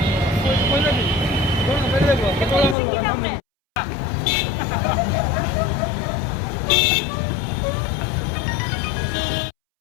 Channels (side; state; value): right; drops out; at 2.8 s